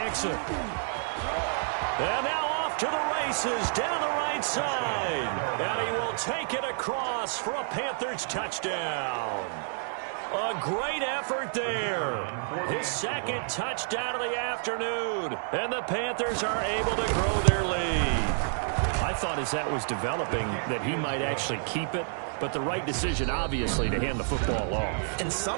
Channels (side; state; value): left; silent; digital silence